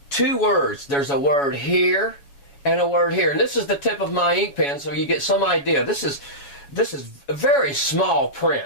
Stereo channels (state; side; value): late; right; 7.2 ms